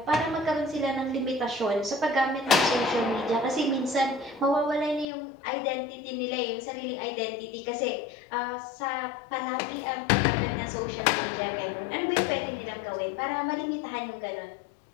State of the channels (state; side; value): drops out; right; at 5.1 s